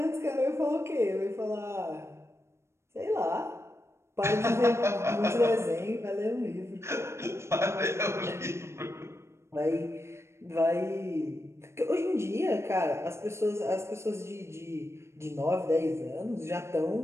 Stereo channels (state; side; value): late; left; 0.13 ms